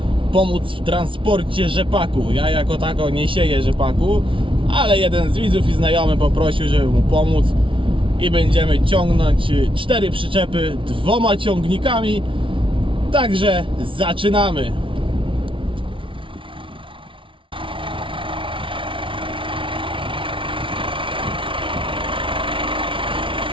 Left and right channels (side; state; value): left; late; 0.25 ms